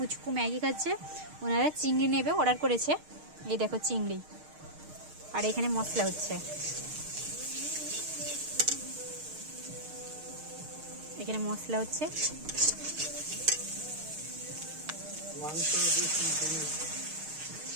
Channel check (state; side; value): late; left; 6.5 ms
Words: ম্যাগি খাচ্ছে। ওনারা চিংড়ি নেবে, অর্ডার করেছে। এই দেখো চিংড়ি, আর এখানে মশলা হচ্ছে। এখানে মশলা হচ্ছে,